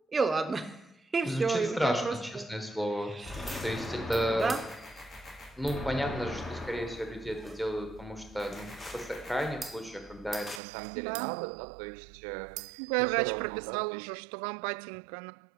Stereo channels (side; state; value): left; drops out; at 10.6 s